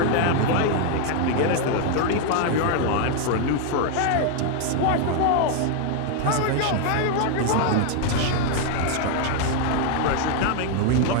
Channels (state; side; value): different; both; correlation 0.00